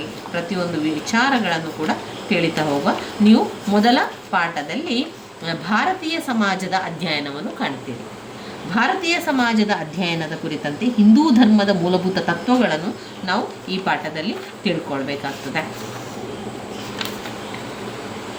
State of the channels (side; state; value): both; identical; correlation 1.00